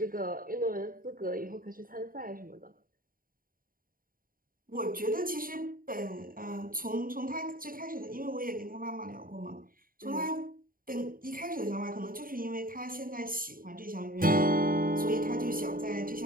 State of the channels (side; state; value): left; late; 0.41 ms